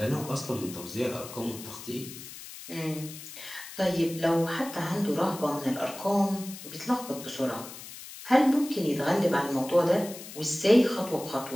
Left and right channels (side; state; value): left; noise; hiss, 13 dB below the sound